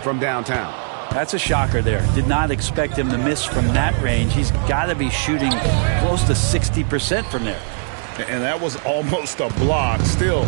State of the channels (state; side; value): silent; left; digital silence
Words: from downtown. That's a shocker there. Did not expect him to miss from that range. He's got to be shooting close to 60% from there. And that was almost a block. Still